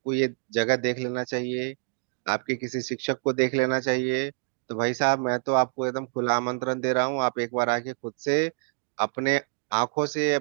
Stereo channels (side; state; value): left; silent; digital silence